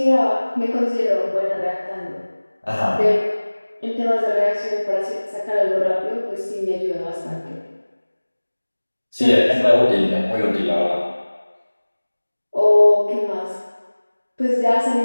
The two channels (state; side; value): inverted; both; correlation -1.00